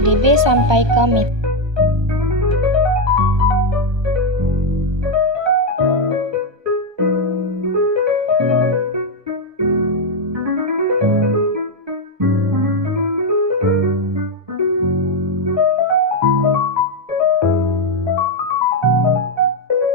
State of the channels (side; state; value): left; late; 1.2 ms